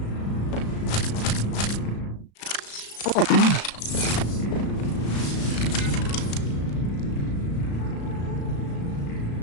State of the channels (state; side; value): late; right; 35 ms